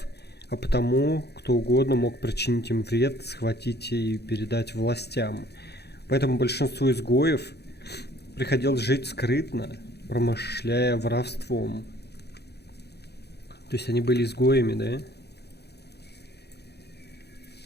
а потому кто угодно мог причинить им вред, схватить и передать властям. Поэтому большинству изгоев приходилось жить скрытно, промышляя воровством. То есть они были изгоями, да?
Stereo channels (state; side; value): late; right; 0.48 ms